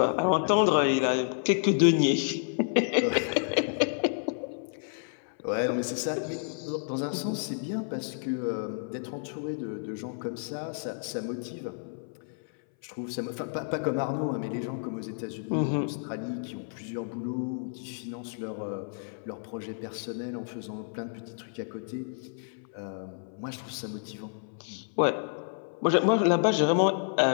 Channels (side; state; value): right; silent; 58 dB below the other